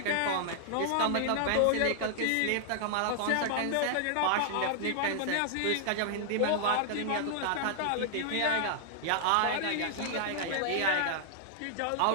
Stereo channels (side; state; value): both; different; correlation -0.01